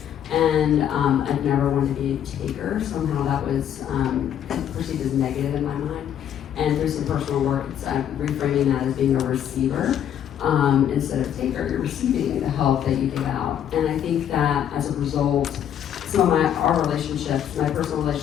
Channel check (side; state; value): right; quieter; 9.8 dB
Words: And I've never wanted to be a taker. Somehow that was perceived as negative in my mind. And through some personal work, I'm reframing that as being a receiver instead of taker. You're receiving the help that you give out. And I think that as a result, some of our relationships, my personal